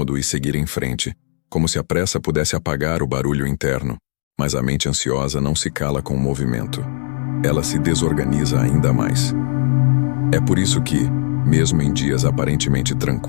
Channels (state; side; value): silent; right; digital silence